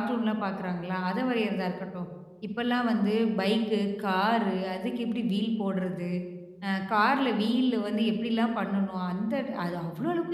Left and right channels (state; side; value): identical; both; correlation 1.00